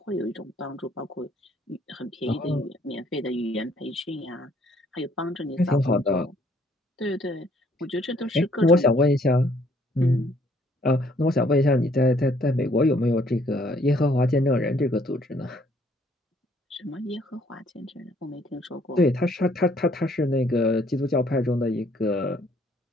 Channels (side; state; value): both; normal; correlation 0.64